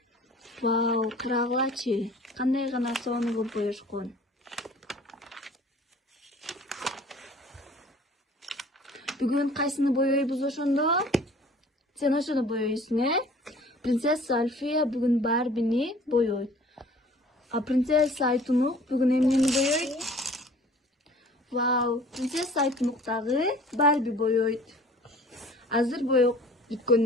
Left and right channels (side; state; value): both; normal; correlation 0.49